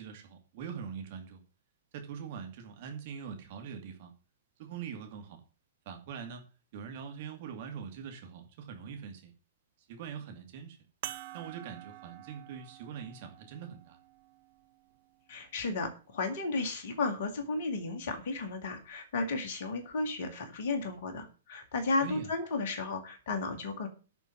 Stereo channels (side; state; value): both; inverted; correlation -0.55